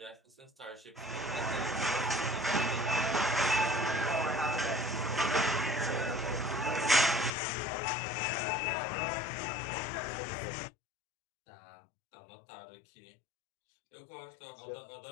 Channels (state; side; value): drops out; right; at 7.4 s